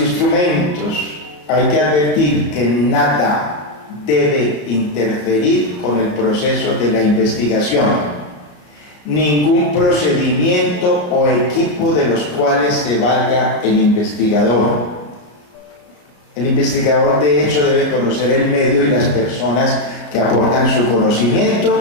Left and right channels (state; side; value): late; right; 33 ms